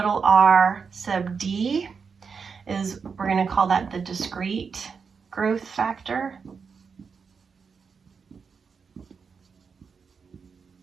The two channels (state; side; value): quieter; left; 5.7 dB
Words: r sub d is, we're going to call that the discrete growth factor.